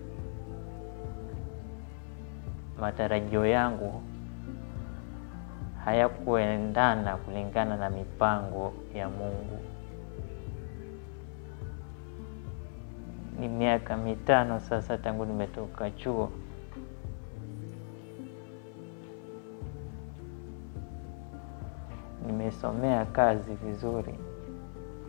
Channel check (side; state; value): right; silent; 54 dB below the other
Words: matarajio yangu hayakuendana kulingana na mipango ya Mungu. Ni miaka 5 sasa tangu nimetoka chuo. Nimesomea kazi vizuri.